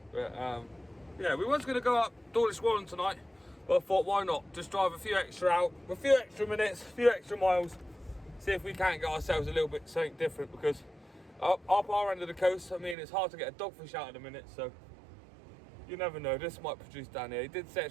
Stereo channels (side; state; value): left; drops out; at 13.0 s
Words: But yeah, we was going to go up Dawlish Warren tonight, but I thought why not? Just drive a few extra out, a few extra minutes, a few extra miles. See if we can't get ourselves a little bit something different, because up our end of the coast, I mean, it's hard to get a dogfish out at the minute, so you never know, this might produce down here. He did say